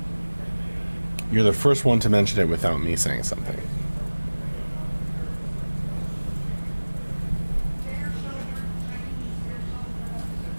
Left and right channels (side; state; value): both; inverted; correlation -1.00